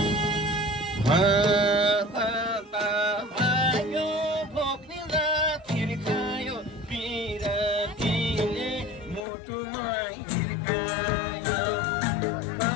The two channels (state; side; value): drops out; right; at 9.2 s